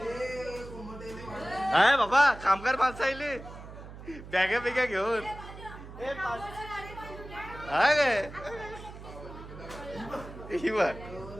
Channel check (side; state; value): right; noise; hum, 14 dB below the sound